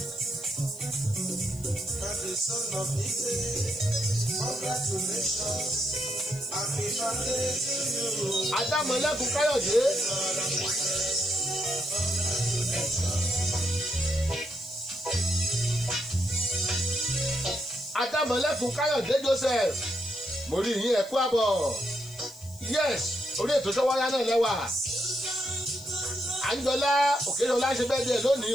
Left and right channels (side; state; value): left; noise; hiss, 22 dB below the sound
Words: Adámọ̀lẹ́kùn Káyọ̀dé. Adámọ̀lẹ́kùn Káyọ̀dé Joseph mo rí yín ẹ̀kú àbọ̀ yes orí ètò Ṣọ́wọ́yá náà lẹ́wà. Àńjọlá Òkèṣọlá ṣe bẹ́ẹ̀dẹ̀ lónìí